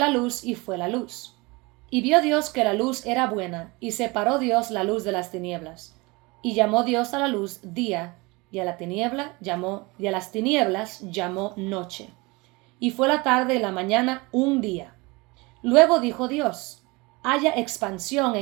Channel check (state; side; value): quieter; left; 25.0 dB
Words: luz, y fue la luz. Y vio Dios que la luz era buena, y separó Dios la luz de las tinieblas. Y llamó Dios a la luz día, y a las tinieblas llamó noche. Y fue la tarde y la mañana un día. Luego dijo Dios, haya expansión